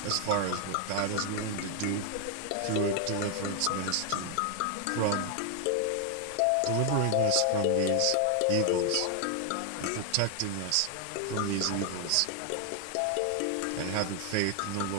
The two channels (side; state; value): both; different; correlation 0.00